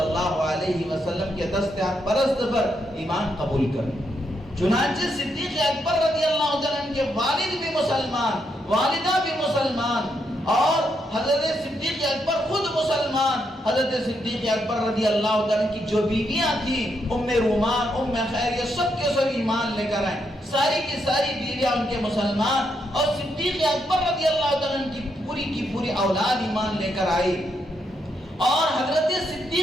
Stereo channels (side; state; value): both; normal; correlation 0.79